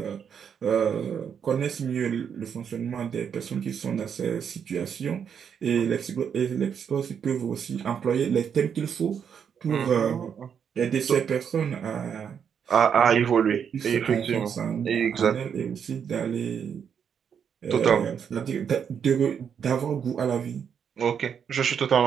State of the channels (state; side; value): quieter; left; 7.6 dB